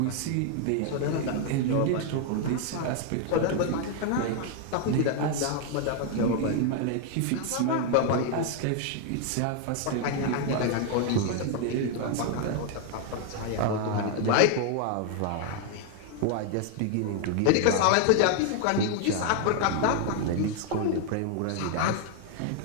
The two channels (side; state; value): both; different; correlation 0.00